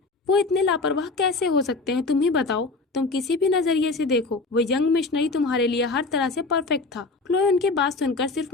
वो इतने लापरवाह कैसे हो सकते हैं, तुम ही बताओ। तुम किसी भी नजरिए से देखो, वो यंग मिशनरी तुम्हारे लिए हर तरह से परफेक्ट था। क्लोए उनकी बात सुनकर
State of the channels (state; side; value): quieter; right; 3.6 dB